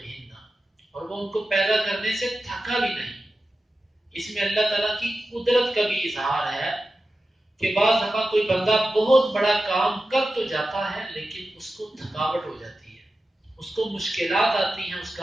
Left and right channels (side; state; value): both; normal; correlation 0.93